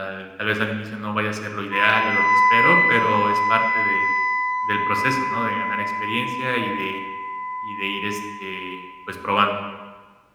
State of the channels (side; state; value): both; identical; correlation 1.00